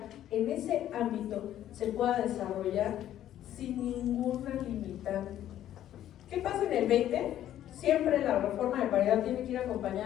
en ese ámbito se pueda desarrollar sin ninguna limitante. ¿Qué pasa en el 20? Siempre la reforma de paridad tiene que ir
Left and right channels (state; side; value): quieter; right; 11.9 dB